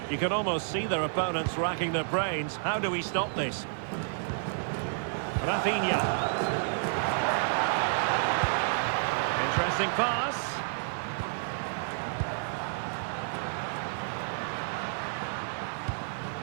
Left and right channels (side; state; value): left; silent; digital silence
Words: You can almost see their opponents racking their brains. How do we stop this? Rafinha. Interesting pass.